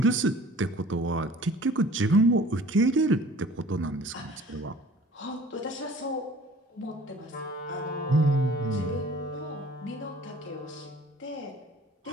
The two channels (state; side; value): normal; both; correlation 0.49